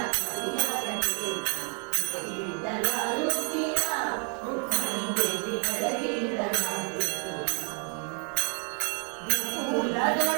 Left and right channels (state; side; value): quieter; left; 39.5 dB